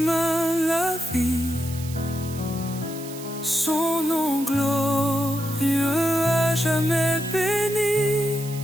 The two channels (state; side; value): noise; right; hiss, 14 dB below the sound